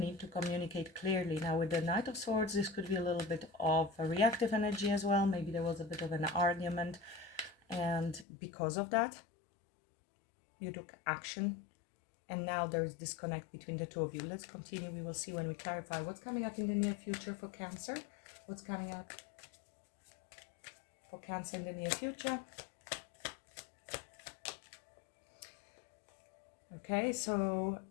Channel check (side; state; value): right; drops out; at 8.2 s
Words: to communicate clearly. Now with the Knight of Swords, this could be a little bit of a reactive energy as well. Maybe there was a bit of an argument, and because of that you took action, and now there's disconnect between the two of you. Let's continue. We will see when we clarify what's coming up in the near future for Cancer. What's coming up for Cancer in the near future? Okay, so